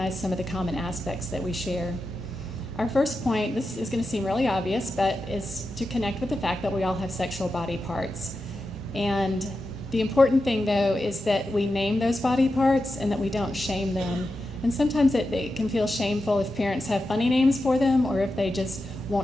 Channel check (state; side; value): normal; both; correlation 0.90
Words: some of the common aspects that we share. Our first point, this is going to seem really obvious, but is to connect with the fact that we all have sexual body parts. And the important thing, though, is that we name those body parts and that we don't shame them. And sometimes it can feel shameful if parents have funny names for them or if they just